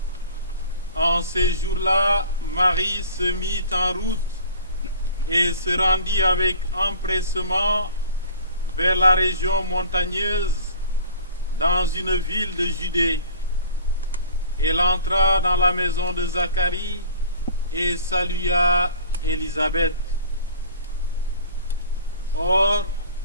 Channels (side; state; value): both; inverted; correlation -0.45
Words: En ces jours-là, Marie se mit en route et se rendit avec empressement vers la région montagneuse dans une ville de Judée. Elle entra dans la maison de Zacharie et salua Élisabeth. Or,